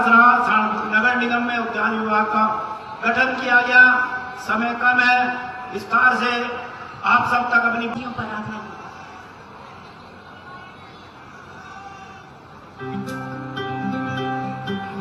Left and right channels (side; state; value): both; identical; correlation 1.00